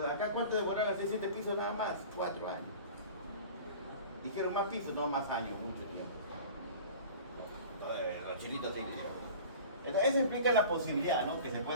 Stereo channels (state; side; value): inverted; both; correlation -0.40